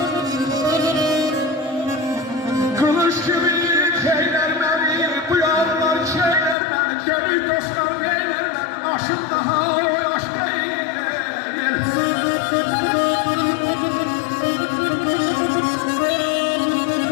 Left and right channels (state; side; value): drops out; right; at 6.6 s